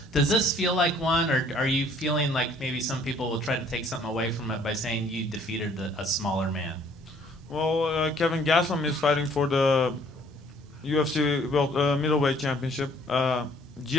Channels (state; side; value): normal; both; correlation 0.59